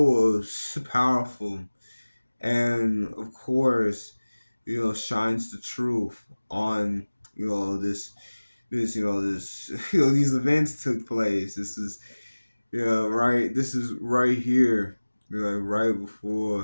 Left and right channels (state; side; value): inverted; both; correlation -1.00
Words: powerful and, of course, shines the truth on, this, these events took place. This is, right, this is right here, right